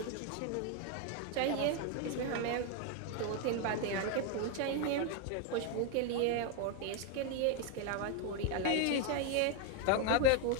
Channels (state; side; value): different; both; correlation 0.01